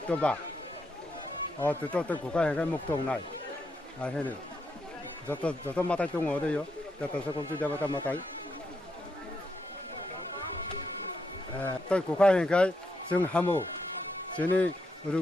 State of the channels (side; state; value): both; normal; correlation 0.80